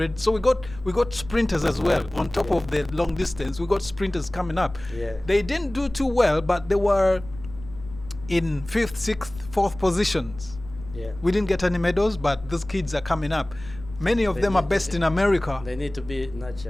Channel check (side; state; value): left; noise; rumble, 16 dB below the sound